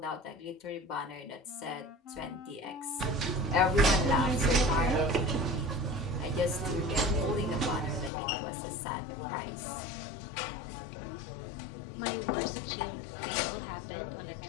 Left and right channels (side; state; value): right; drops out; at 8.1 s